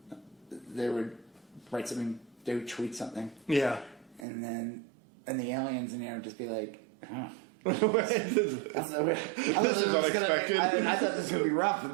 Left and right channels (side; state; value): left; drops out; at 4.2 s